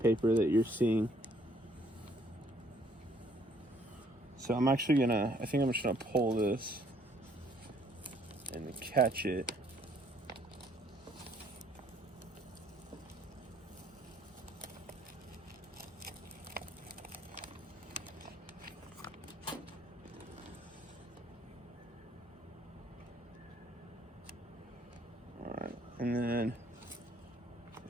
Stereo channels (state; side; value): normal; both; correlation 0.64